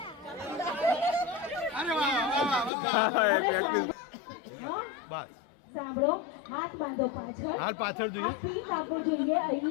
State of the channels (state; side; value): drops out; right; at 2.7 s